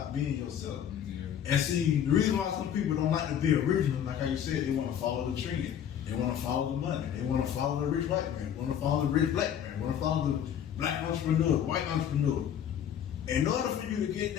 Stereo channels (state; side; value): quieter; right; 9.3 dB